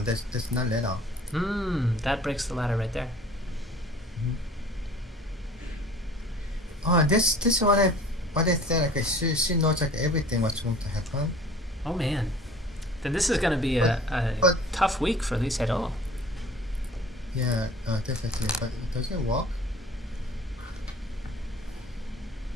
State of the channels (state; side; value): normal; both; correlation 0.47